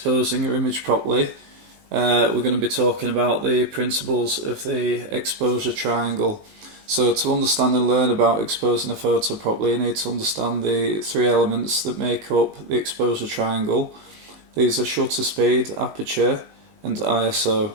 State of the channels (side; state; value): left; late; 19 ms